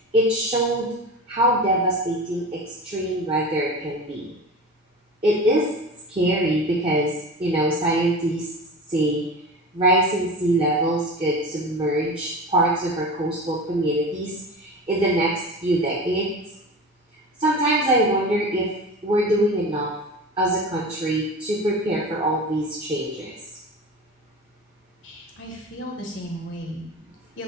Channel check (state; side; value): normal; both; correlation 0.31